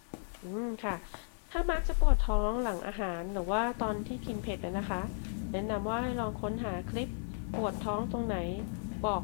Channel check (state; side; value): silent; right; 55 dB below the other